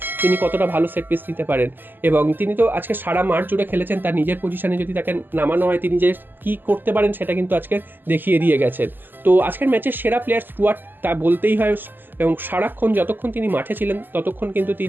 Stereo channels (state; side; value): late; left; 0.091 ms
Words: তিনি কতটা ভালো সেট পিস নিতে পারেন। এবং তিনি তো আজকে সারা মাঠ জুড়ে খেলেছেন, তার নিজের পজিশনে যদি তাকে নামানো হয় তিনি যে কী করতে পারেন সেটা কিন্তু আজকে দেখিয়ে দিয়ে গেছেন। তো আজকের ম্যাচের সেরা প্লেয়ার স্টুয়ার্ট, তা বলতেই হয়। এবং সারাক্ষণ যতক্ষণ তিনি মাঠে ছিলেন ততক্ষণ কিন্তু